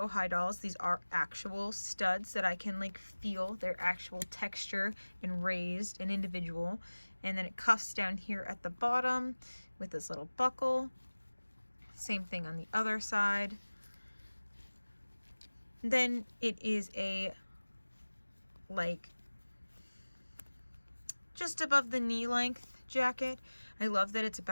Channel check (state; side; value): inverted; both; correlation -1.00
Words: High dolls, these are actual studs that I can like feel their actual texture and raised and individual. And then it cuffs down here at the bottom with this little buckle. Same thing on the other side. Then it is a like just above the knee length jacket. I love that it's